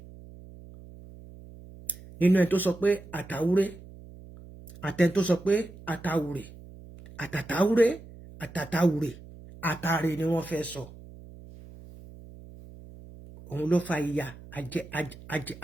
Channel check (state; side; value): noise; right; hum, 18 dB below the sound